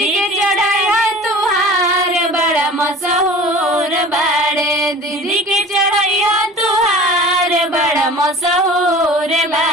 के चढ़ाया तुहार बड़ा मशहूर बाड़े, दीदी के चढ़ाया तुहार बड़ा मशहूर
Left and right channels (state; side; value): normal; both; correlation 0.41